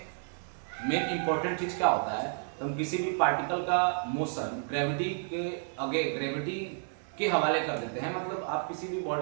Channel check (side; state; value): left; silent; digital silence